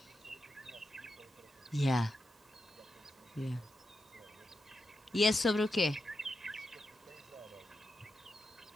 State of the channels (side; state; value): both; normal; correlation 0.88